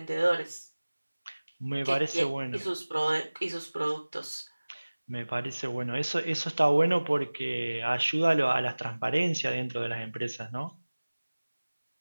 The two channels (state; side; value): inverted; both; correlation -1.00